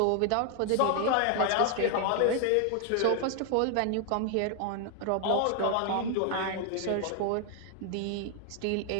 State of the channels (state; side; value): different; both; correlation 0.00